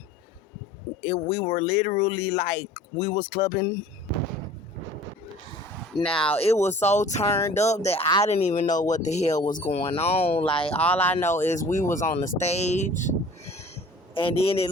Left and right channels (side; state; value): both; normal; correlation 0.47